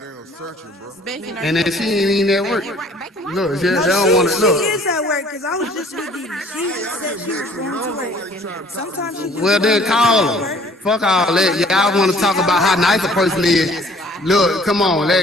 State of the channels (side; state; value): both; normal; correlation 0.55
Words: searching, bro. And then she ain't even at work. Look, they don't want to She look. is at work because I was just with Didi. She just said she was going to work. Sometimes she Well, then call her. Fuck all that. Y'all want to talk about how nice a person is. Look, come on,